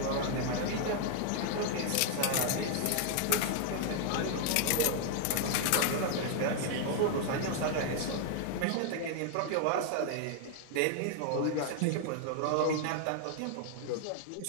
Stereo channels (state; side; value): different; both; correlation 0.00